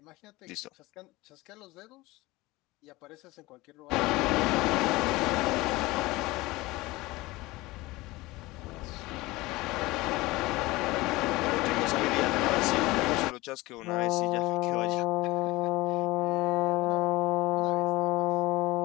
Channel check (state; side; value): quieter; right; 20.5 dB